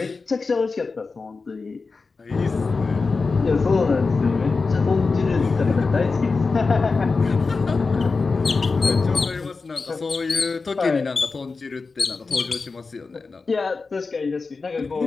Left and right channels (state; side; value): quieter; right; 4.3 dB